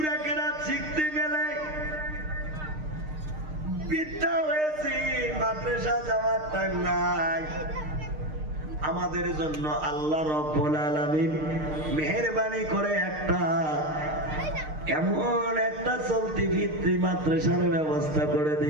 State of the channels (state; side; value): late; left; 6.5 ms